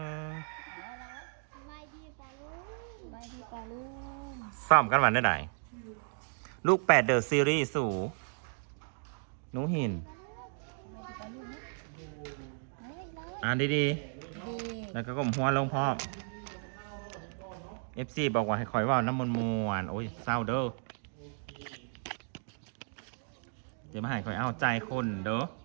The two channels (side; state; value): left; silent; 55 dB below the other